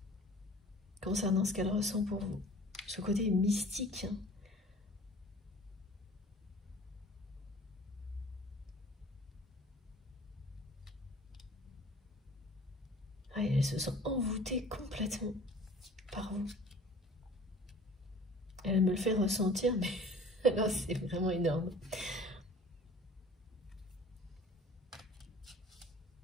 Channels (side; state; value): both; normal; correlation 0.47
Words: concernant ce qu'elle ressent pour vous. Ce côté mystique. Elle se sent envoûtée complètement par vous. Elle me le fait ressentir, mais là, c'est vraiment énorme.